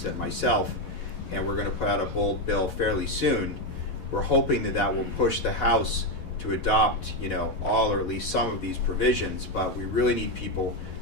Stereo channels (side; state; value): right; late; 11 ms